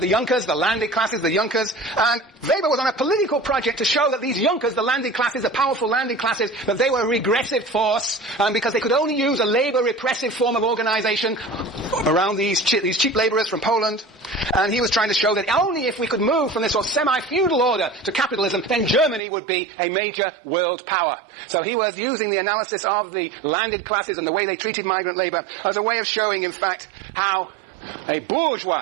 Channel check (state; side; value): drops out; left; at 19.2 s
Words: the Junkers, the landed classes, the Junkers, and Weber was on a political project to show that these Junkers, the landed classes, the powerful landed classes, that they were a regressive force, because they could only use a labor repressive form of organization around these cheap laborers from Poland. And he was trying to show that only if we could move from this sort of semi-feudal order to capitalism, then Germany would be a major world power. So he was using the analysis of the landed classes and the way they treated migrant labor as a way of showing, in fact, how a